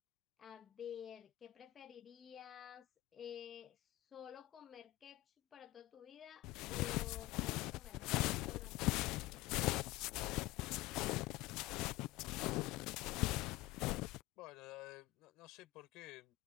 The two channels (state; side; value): quieter; right; 18.7 dB